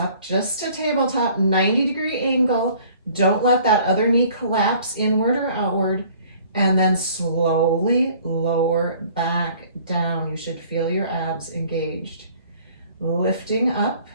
just a tabletop, 90-degree angle. Don't let that other knee collapse inward or outward. And then slowly lower back down. You should feel your abs engaged. Lifting up,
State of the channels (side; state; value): both; inverted; correlation -0.54